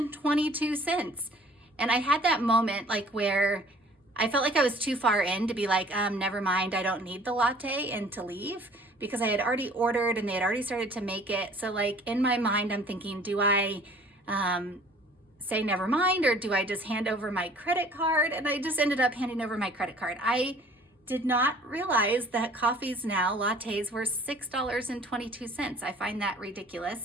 And I had that moment like where I felt like I was too far in to be like, never mind, I don't need the latte, and to leave, because I had already ordered and they had already started to make it. So like in my mind, I'm thinking, do I say never mind, or do I just hand over my credit card? And I just ended up handing over my credit card. I did not realize that coffees now, lattes, were $6.22. I find that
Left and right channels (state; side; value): normal; both; correlation 0.52